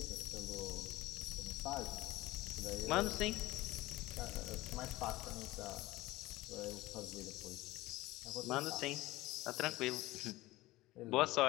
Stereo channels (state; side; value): quieter; right; 18.5 dB